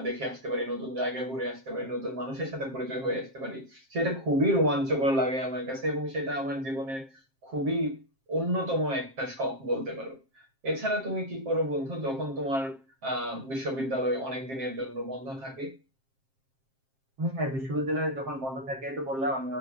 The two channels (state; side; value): late; left; 7.5 ms